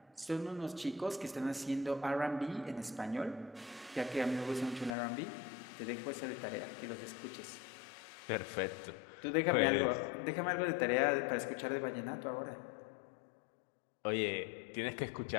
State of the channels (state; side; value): drops out; right; at 4.9 s